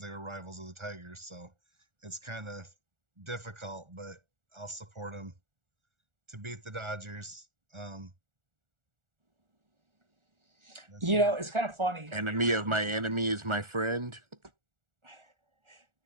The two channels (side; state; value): left; late; 1.4 ms